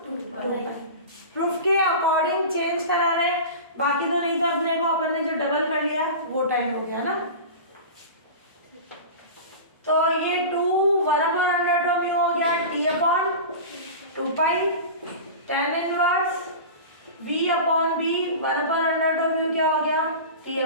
2 पाई। प्रूफ के अकॉर्डिंग चेंज करा रहे हैं, बाकी तो नहीं, तो अपने को अपन ने जो डबल कर लिया वो टाइम हो गया ना। तो ये 1 अपॉन अंडर ऑफ म्यू हो गया T upon 2 pi, tan inverse v upon b 1 upon under of mu क्या हो गया T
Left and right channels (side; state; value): both; inverted; correlation -0.31